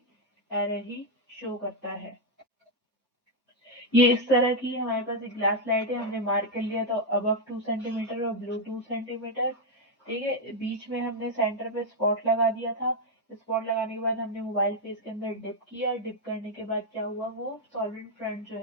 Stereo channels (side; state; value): both; normal; correlation 0.01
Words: एरर ही शो करता है। ये इस तरह की हमारे पास एक ग्लास लाइट है, हमने मार्क कर लिया था अबव 2 सेंटीमीटर और बिलो 2 सेंटीमीटर, ठीक है। बीच में हमने सेंटर पे स्पॉट लगा दिया था। स्पॉट लगाने के बाद हमने मोबाइल फेस के अंदर डिप किया, डिप करने के बाद क्या हुआ, वो सॉलिड फ्रंट जो